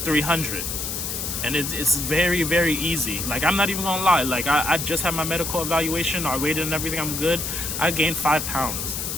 300. And it's very, very easy. Like, I'm not even gonna lie. Like, I just had my medical evaluation, I weighed and everything, I'm good. I gained 5 pounds.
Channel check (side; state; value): left; noise; hiss, 4 dB below the sound